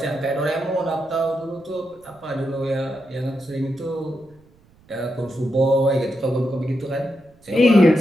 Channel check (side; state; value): right; noise; rumble, 30 dB below the sound